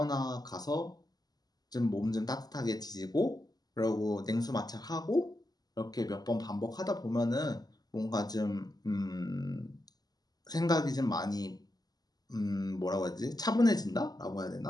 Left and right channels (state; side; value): late; right; 0.19 ms